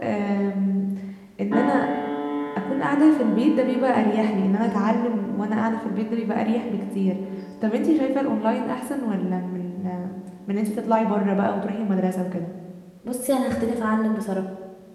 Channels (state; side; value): identical; both; correlation 1.00